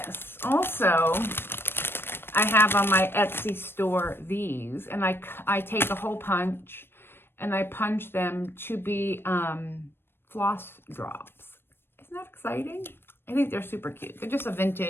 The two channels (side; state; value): right; late; 0.11 ms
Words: Also, I have on my Etsy store these, and I take a hole punch and I punch them to be floss drops. Isn't that exciting? I think they're super cute. They're just a